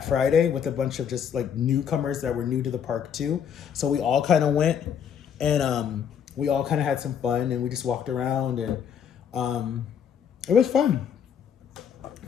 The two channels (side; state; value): right; quieter; 8.1 dB